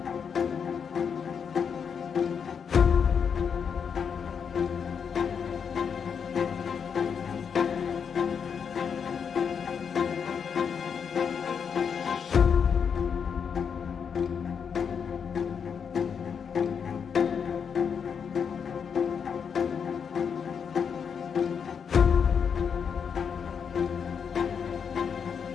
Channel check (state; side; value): quieter; right; 6.8 dB